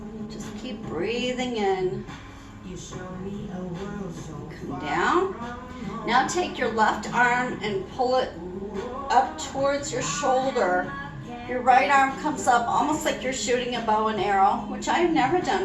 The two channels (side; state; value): both; identical; correlation 1.00